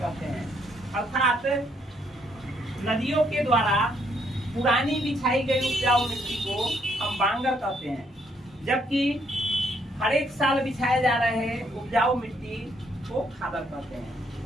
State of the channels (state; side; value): normal; both; correlation 0.71